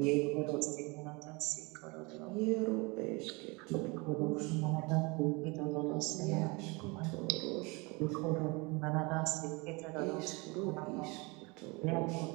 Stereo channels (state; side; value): quieter; left; 27.2 dB